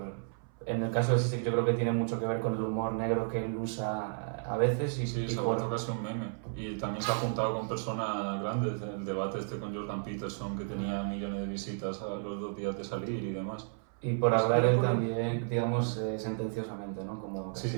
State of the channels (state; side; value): silent; left; 56 dB below the other